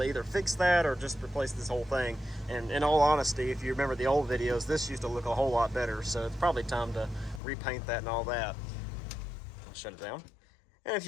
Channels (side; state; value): right; drops out; at 7.4 s